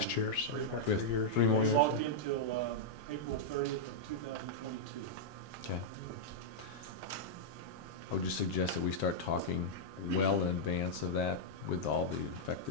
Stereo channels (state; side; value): normal; both; correlation -0.05